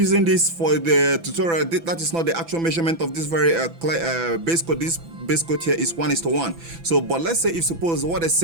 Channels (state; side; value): late; left; 6.0 ms